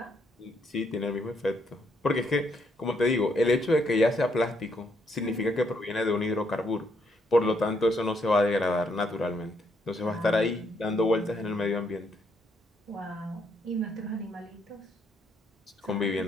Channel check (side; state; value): both; normal; correlation 0.73